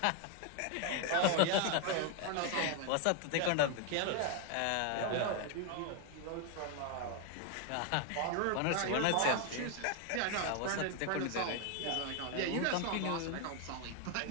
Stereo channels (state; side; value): different; both; correlation 0.01